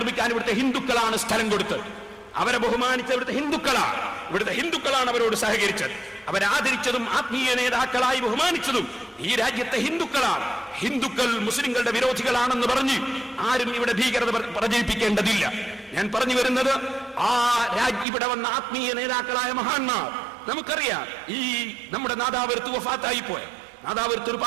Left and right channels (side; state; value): left; drops out; at 18.1 s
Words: ഇവിടുത്തെ ഹിന്ദുക്കളാണ് സ്ഥലം കൊടുത്തത്. അവരെ ബഹുമാനിച്ച ഇവിടുത്തെ ഹിന്ദുക്കളാണ് അവരോട് സഹകരിച്ചത്. അവരാദരിച്ചതും ആത്മീയ നേതാക്കളായി ബഹുമാനിച്ചതും ഈ രാജ്യത്തെ ഹിന്ദുക്കളാണ്. ഹിന്ദുക്കൾ മുസ്ലിങ്ങളുടെ വിരോധികളാണെന്ന് പറഞ്ഞ് ആരും ഇവിടെ ഭീകരത പ്രചരിപ്പിക്കേണ്ടതില്ല. ഞാൻ പറഞ്ഞു വരുന്നത്, ഇവിടെ വന്ന ആത്മീയ നേതാക്കളായ മഹാന്മാർ, നമുക്കറിയാം, ഈ നമ്മുടെ നാദാപുരത്ത് വഫാത്തായി പോയ നാദാപുരത്ത്